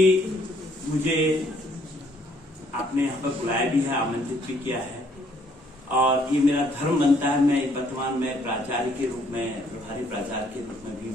मुझे आपने यहाँ पर बुलाया भी है, आमंत्रित भी किया है, और ये मेरा धर्म बनता है। मैं वर्तमान में प्राचार्य के रूप में, प्रभारी प्राचार्य के रूप में भी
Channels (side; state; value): both; normal; correlation 0.65